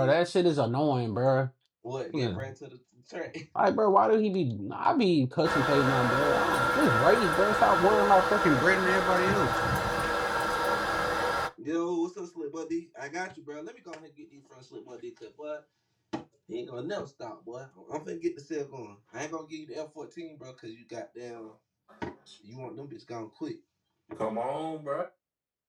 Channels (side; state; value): both; identical; correlation 1.00